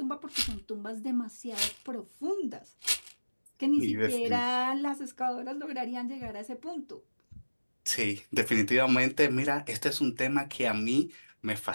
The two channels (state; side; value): inverted; both; correlation -1.00